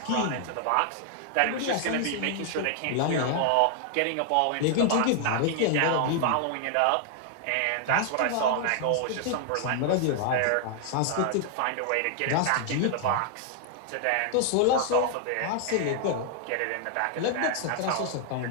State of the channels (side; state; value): both; different; correlation 0.00